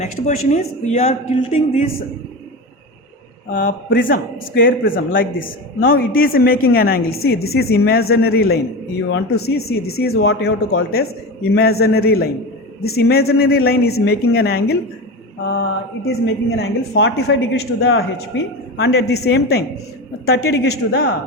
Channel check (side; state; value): both; normal; correlation 0.24